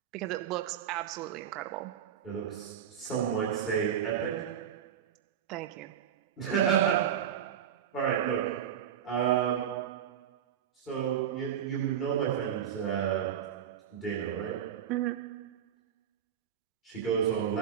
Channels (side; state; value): left; quieter; 9.1 dB